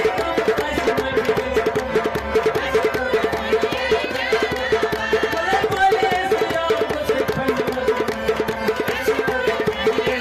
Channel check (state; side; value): identical; both; correlation 1.00